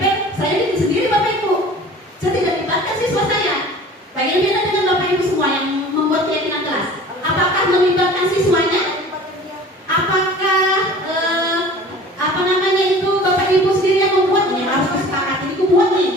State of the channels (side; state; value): both; normal; correlation 0.44